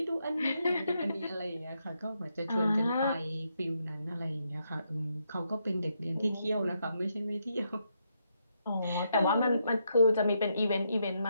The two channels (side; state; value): both; inverted; correlation -0.80